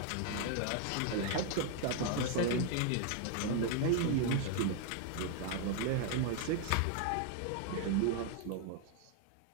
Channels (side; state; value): both; different; correlation 0.00